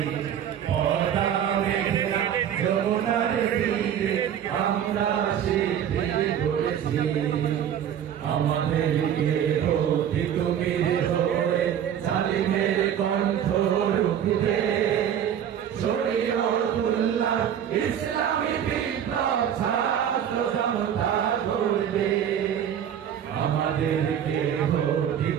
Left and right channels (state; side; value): quieter; left; 9.4 dB